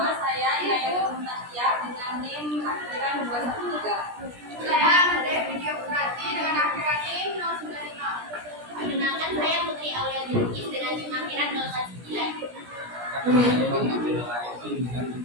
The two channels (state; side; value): late; left; 17 ms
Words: saya Inaya Tasya dengan NIM akhiran 213. Saya Andre Video Purati dengan akhiran NIM 095. Perkenalkan, saya Putri Aulia Jurkis dengan NIM akhiran 019.